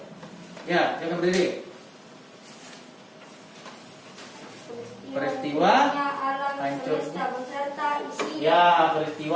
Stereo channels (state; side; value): identical; both; correlation 1.00